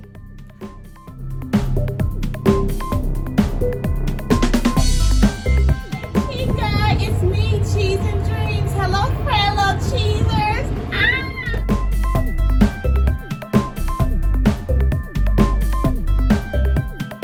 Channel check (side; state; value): both; identical; correlation 1.00